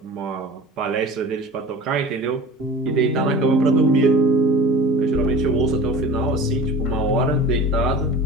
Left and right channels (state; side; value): normal; both; correlation 0.37